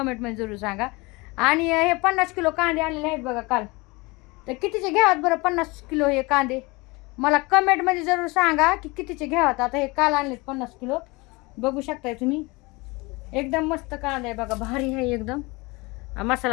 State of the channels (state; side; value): quieter; right; 24.9 dB